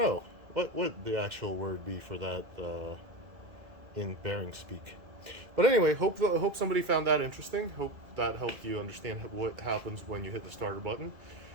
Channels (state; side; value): late; left; 2.1 ms